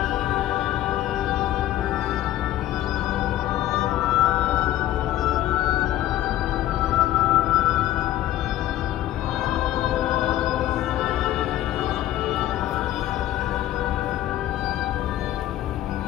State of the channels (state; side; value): quieter; right; 13.6 dB